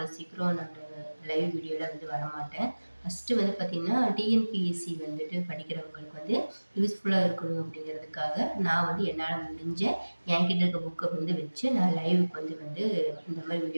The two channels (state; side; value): inverted; both; correlation -1.00